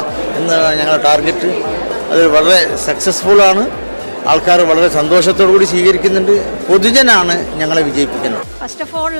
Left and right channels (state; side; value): inverted; both; correlation -1.00